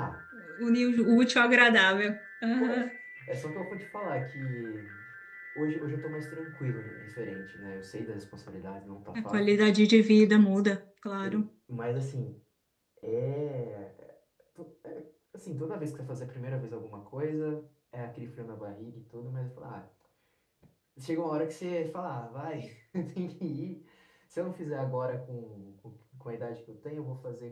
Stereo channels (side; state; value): both; identical; correlation 1.00